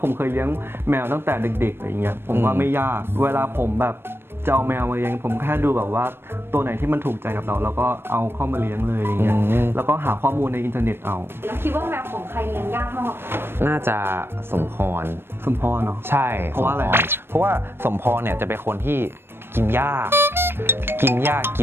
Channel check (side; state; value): left; late; 0.11 ms